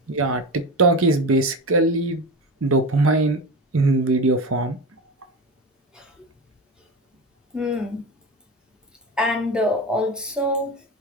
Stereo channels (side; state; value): both; normal; correlation 0.25